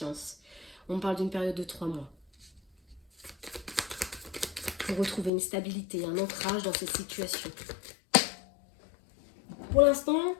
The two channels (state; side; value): drops out; right; at 5.3 s